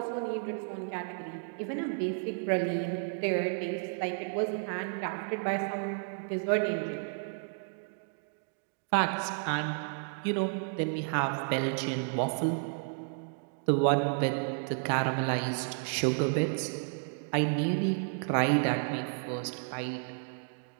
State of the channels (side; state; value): left; silent; 56 dB below the other